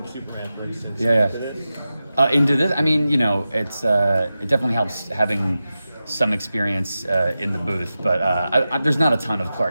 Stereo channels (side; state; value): both; inverted; correlation -0.93